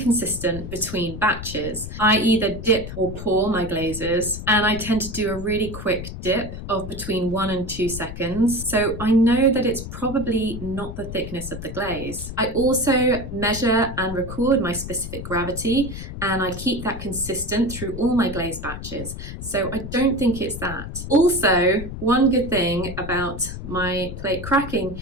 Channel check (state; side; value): noise; left; rumble, 9 dB below the sound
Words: between batches. I either dip or pour my glazes, and I tend to do a really quick dip of between 1 and 2 seconds, so I know that it's probably not the thickness of the glaze. I also measure and record my specific gravity, and I keep that consistent through all my glaze batches, so I don't think it's that. Also, one good thing about my plate cracking